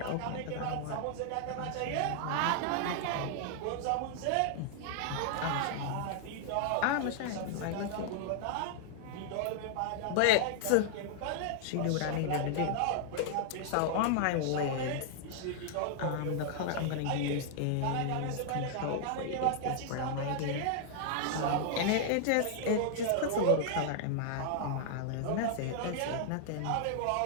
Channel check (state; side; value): different; both; correlation -0.01